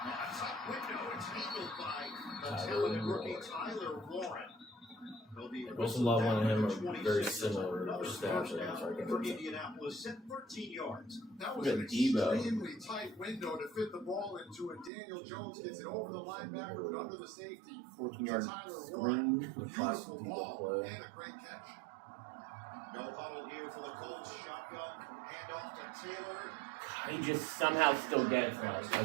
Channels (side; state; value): left; drops out; at 14.9 s